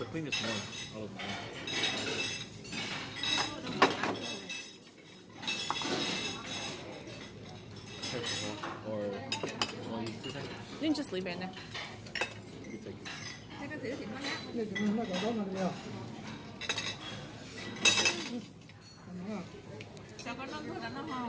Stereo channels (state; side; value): identical; both; correlation 1.00